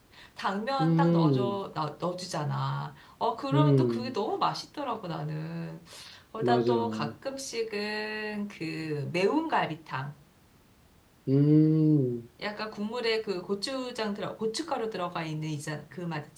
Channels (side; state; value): both; identical; correlation 1.00